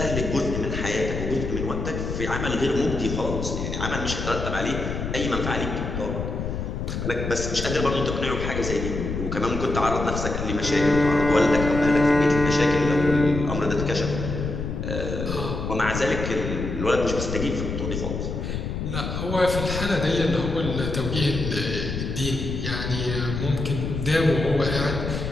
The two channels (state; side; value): noise; left; rumble, 4 dB below the sound